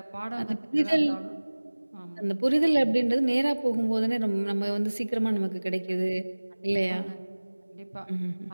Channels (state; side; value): inverted; both; correlation -1.00